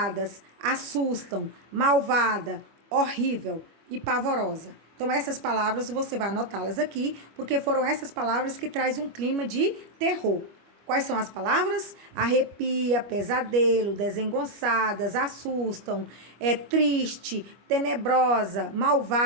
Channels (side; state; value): left; late; 25 ms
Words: assustam, malvada, horrível e pavorosa. Então, essas palavras você vai anotá-las aqui, porque foram essas palavras que trazem um clima de terror. Quais são as palavras? Arrepia, pesadelo, desengonçadas, assustam, triste, tenebrosa,